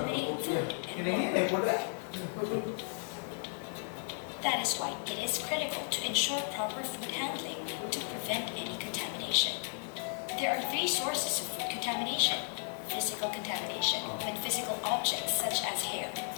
food and water. That is why it is critical to ensure proper food handling to prevent any contamination. There are three sources of food contamination: physical contamination, when physical objects such as hair,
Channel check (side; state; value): right; silent; 55 dB below the other